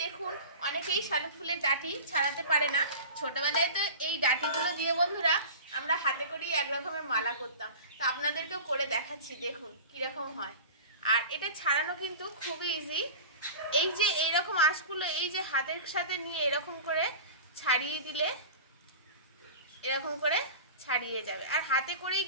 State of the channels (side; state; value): both; inverted; correlation -0.35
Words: দেখুন, অনেকেই শালুক ফুলের ডাঁটি ছাড়াতে পারে না। ছোটবেলায় তো এই ডাঁটিগুলো দিয়ে বন্ধুরা আমরা হাতে করেই এক রকমের মালা করতাম। তো আপনাদেরকেও করে দেখাচ্ছি, দেখুন কিরকম হয়। আর এটা ছাড়ানো কিন্তু খুবই ইজি। এই যে এইরকম আঁশগুলো এই যে হাতের সাথে নিয়ে এরকম করে ছাড়িয়ে দিলে এরকম করে ছাড়িয়ে যাবে। আর হাতে করেই